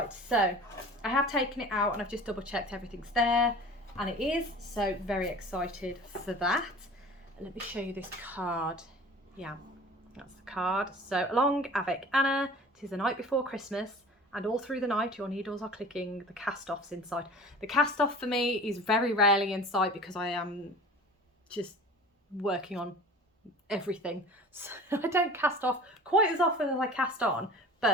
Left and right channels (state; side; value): normal; both; correlation 0.41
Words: so I have taken it out and I've just double checked everything's there, and it is, so very excited for that. And let me show you this card. Yeah, that's the card. So Along Avec Anna, 'tis the night before Christmas, and all through the night your needles are clicking, the cast-offs inside. The cast-off for me is very rarely in sight because I am just working on everything. So I don't cast off quite as often as I cast on,